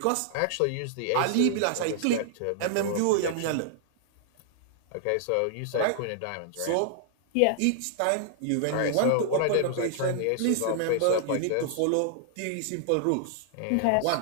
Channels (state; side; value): different; both; correlation -0.01